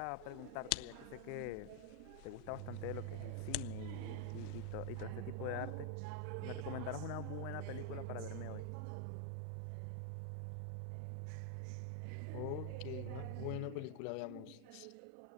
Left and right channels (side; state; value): both; different; correlation 0.00